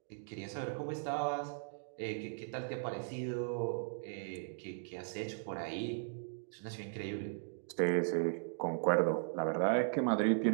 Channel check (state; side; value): silent; left; digital silence